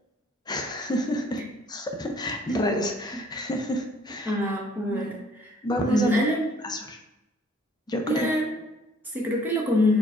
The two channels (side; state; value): both; normal; correlation 0.59